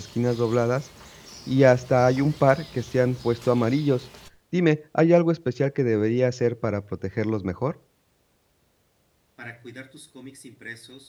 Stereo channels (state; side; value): identical; both; correlation 1.00